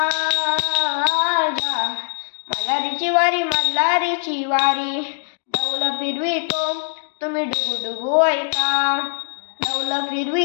मल्हारीची वारी, मल्हारीची वारी. डौल फिरवितो तुम्ही डुगू डुगू ऐका, डौल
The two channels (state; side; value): silent; right; digital silence